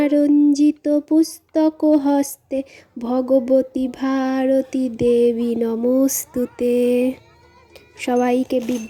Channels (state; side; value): identical; both; correlation 1.00